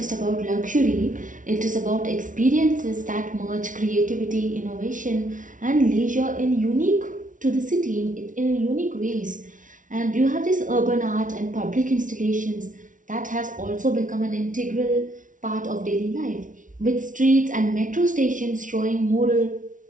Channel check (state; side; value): late; left; 0.38 ms